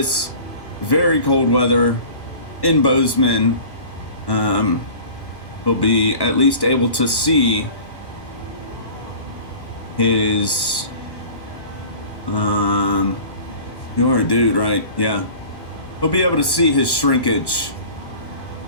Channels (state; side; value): late; right; 1.1 ms